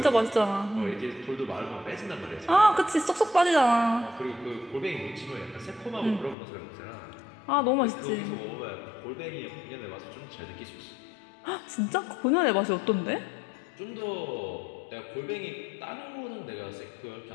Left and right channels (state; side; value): drops out; right; at 6.4 s